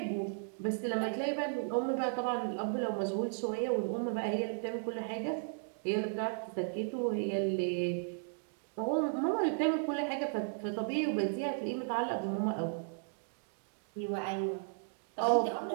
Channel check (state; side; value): silent; left; digital silence